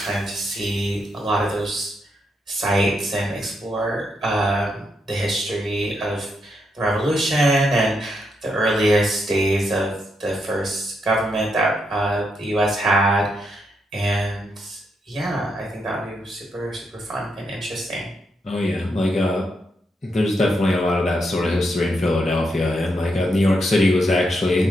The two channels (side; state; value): both; normal; correlation 0.81